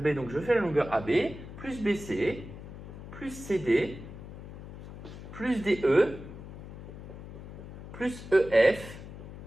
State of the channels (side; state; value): left; noise; hum, 13 dB below the sound